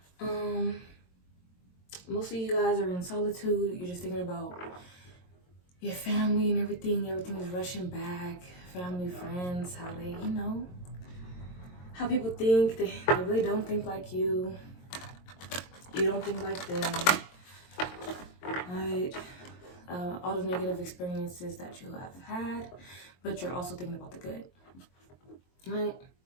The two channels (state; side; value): late; right; 22 ms